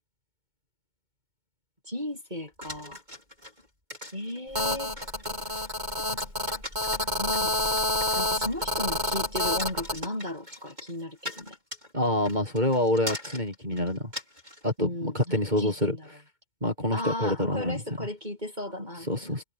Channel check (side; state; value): left; late; 2.2 ms